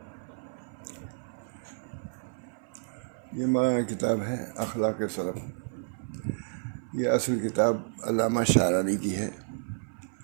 یہ مولانا کتاب ہے اخلاق سلف. یہ اصل کتاب علامہ شعرانی کی ہے،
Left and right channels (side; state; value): left; silent; 56 dB below the other